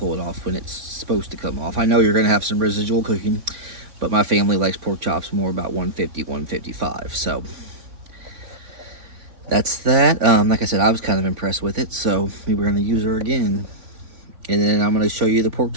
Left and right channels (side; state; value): left; late; 3.5 ms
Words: it off when it's supposed to come off. I know you're gonna have some residual cooking, but my family likes pork chops more about 150, 155. So that's that. Like I said, I was kind of impressed with it, so we were gonna use her again. And then I'm gonna show you the pork